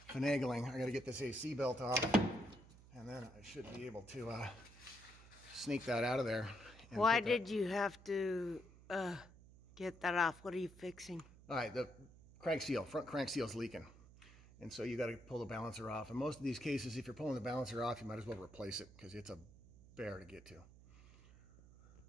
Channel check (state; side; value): noise; right; hum, 21 dB below the sound